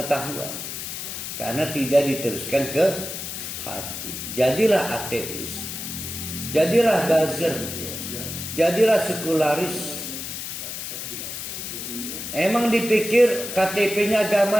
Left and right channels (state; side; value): noise; left; hiss, 7 dB below the sound